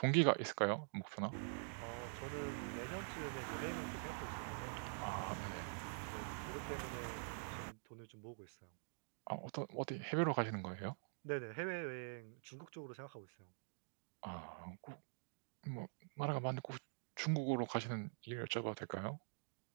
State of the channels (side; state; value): left; silent; digital silence